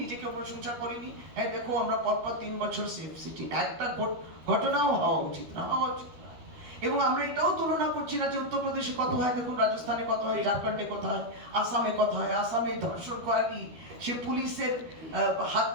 নিজেকে প্রশংসা করিনি। হ্যাঁ দেখো আমরা পরপর 3 বছর সেফ সিটি, একটা ঘটনাও হওয়া উচিত না। এবং আমরা এটাও তুলনা করছি না যে উত্তরপ্রদেশে কত হয়, দেখুন রাজস্থানে কত হয়, ঝাড়খণ্ডে কত হয়, আসামে কত হয়। আসামে ধর্ষণকারী সে পুলিশের হাত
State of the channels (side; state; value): left; late; 13 ms